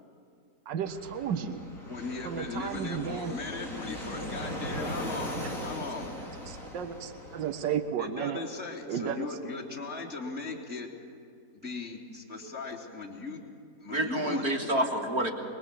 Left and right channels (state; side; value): late; left; 3.8 ms